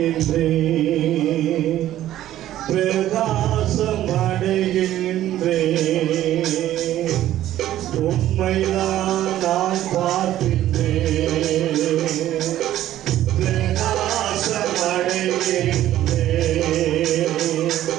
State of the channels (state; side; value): quieter; left; 13.1 dB